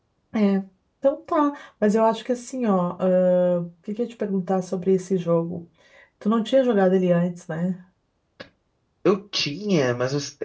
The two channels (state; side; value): identical; both; correlation 1.00